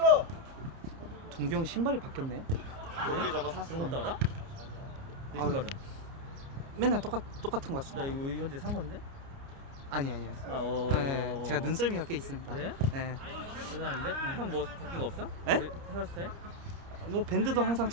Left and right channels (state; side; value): late; left; 29 ms